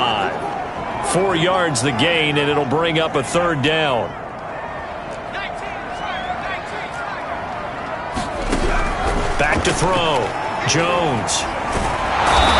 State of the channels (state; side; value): identical; both; correlation 1.00